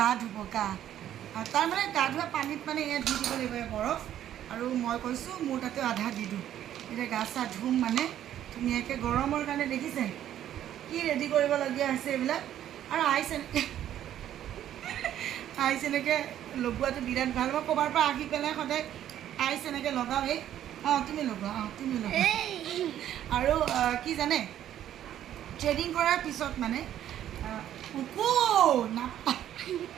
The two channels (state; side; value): quieter; left; 11.3 dB